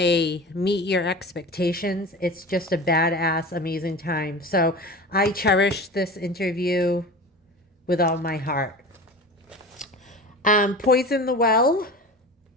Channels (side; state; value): both; normal; correlation 0.33